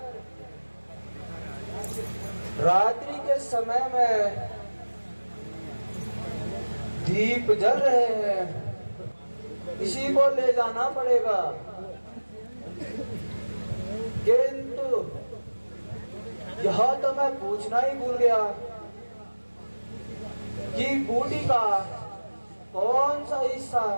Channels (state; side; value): inverted; both; correlation -1.00